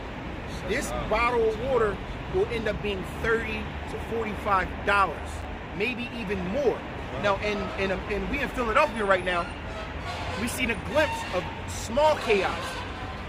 this bottle of water will end up being $30 to $45, maybe even more. Wow. Now, and we in Philadelphia right now, we seen a glimpse of small chaos.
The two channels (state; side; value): identical; both; correlation 1.00